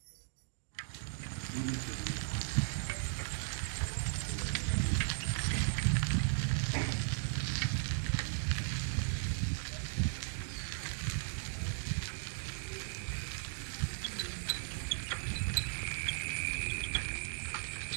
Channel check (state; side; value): silent; left; digital silence